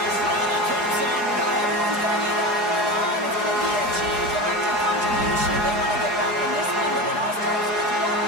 running. Comes in. Everyone's going to need that going on. It's going to be a team collective contribution if they want to get back in this one, but it all starts with one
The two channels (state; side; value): late; left; 4.8 ms